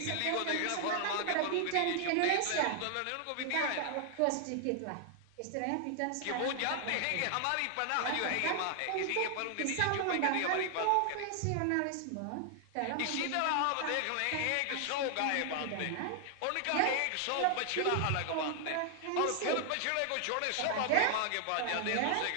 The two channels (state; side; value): different; both; correlation 0.00